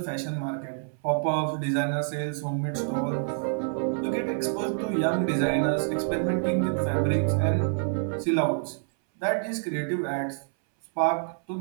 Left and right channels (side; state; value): left; silent; 60 dB below the other